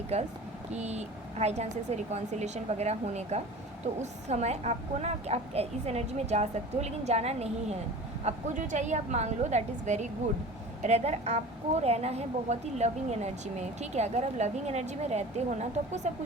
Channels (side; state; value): both; normal; correlation 0.38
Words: कि हाई चांसेस है रिकॉन्सिलेशन वगैरह होने का। तो उस समय आपको ना, आप इस एनर्जी में जा सकते हो, लेकिन जाना नहीं है। आपको जो चाहिए आप मांग लो, that is very good. Rather आपको रहना है बहुत ही लविंग एनर्जी में। ठीक है, अगर आप लविंग एनर्जी में रहते हो ना तो आपको सब